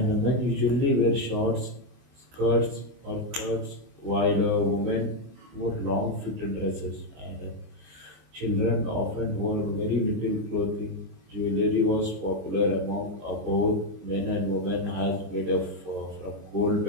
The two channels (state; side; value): late; left; 24 ms